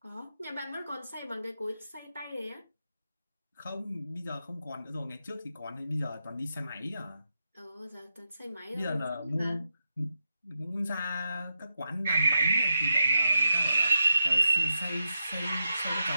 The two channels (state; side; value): inverted; both; correlation -0.87